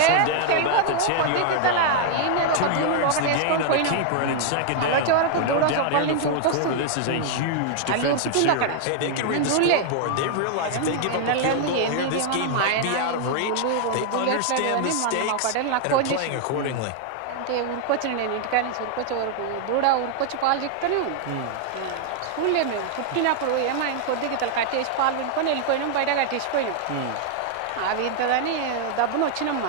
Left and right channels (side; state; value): both; different; correlation 0.00